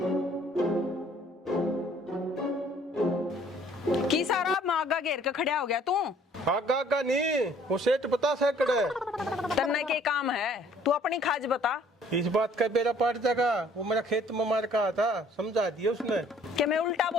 की सारा मागा घेर के खड़ा हो गया तू? आगा आगा नहीं, वो सेठ बता सकड़े। तन्ने के काम है, तू अपनी खाज बता। इस बात का बेरा पाट जाएगा, वो मेरा खेत में मार कहा था, समझा दिया उसने। कि मैं उल्टा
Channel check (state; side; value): normal; both; correlation 0.58